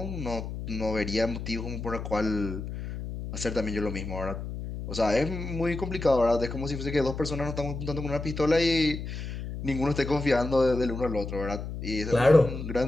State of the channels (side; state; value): left; noise; hum, 7 dB below the sound